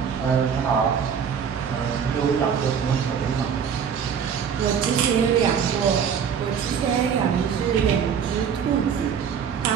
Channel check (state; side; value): quieter; left; 7.4 dB